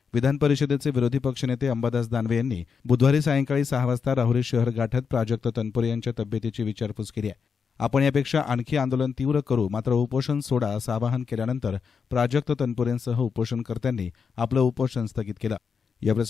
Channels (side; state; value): right; quieter; 6.0 dB